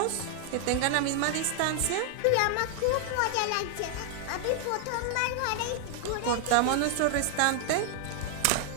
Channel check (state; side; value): different; both; correlation 0.00